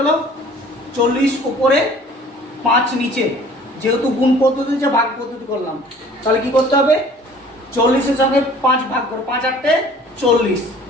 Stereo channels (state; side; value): normal; both; correlation 0.51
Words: 40 উপরে 5 নিচে, যেহেতু গুণ পদ্ধতি যে ভাগ পদ্ধতি করলাম, তাহলে কি করতে হবে 40-এর সঙ্গে 5 ভাগ করো, 5 8 40,